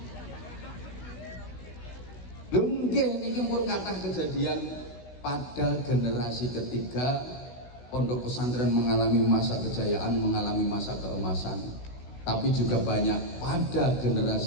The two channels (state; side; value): late; right; 16 ms